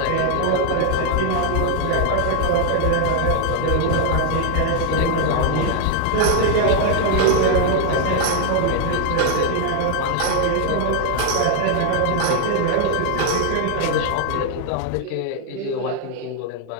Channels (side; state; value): both; different; correlation 0.00